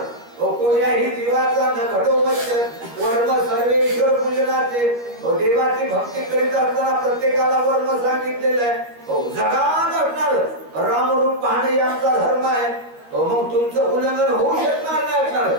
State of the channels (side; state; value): left; late; 13 ms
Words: कोण्याही जीवाचा न घडो मच्छर वर्म सर्वेश्वर पूजनाचे देवाची भक्ती करीत असताना प्रत्येकाला वर्म सांगितलेलं आहे जगात असणार रामरूप पाहणे आमचा धर्म आहे मग तुमचं उल्लंघन होऊ शकणार नाही असणार